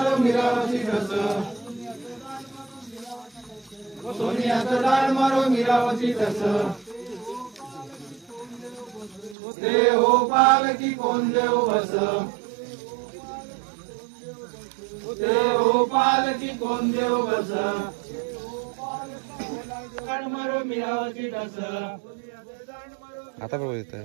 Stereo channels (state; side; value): drops out; left; at 9.3 s